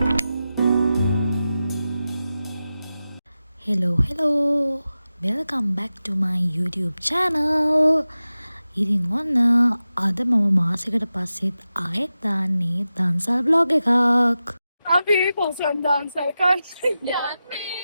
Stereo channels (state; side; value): inverted; both; correlation -0.93